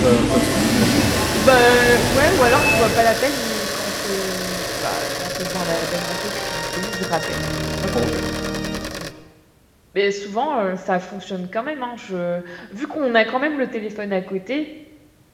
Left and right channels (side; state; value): both; identical; correlation 1.00